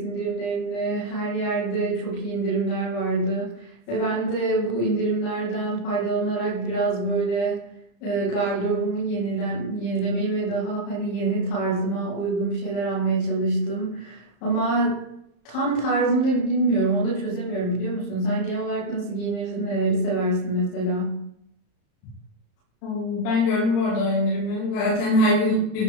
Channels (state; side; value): late; right; 35 ms